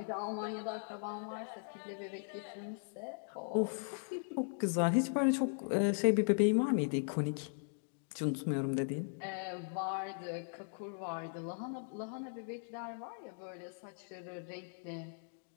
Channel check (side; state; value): right; silent; digital silence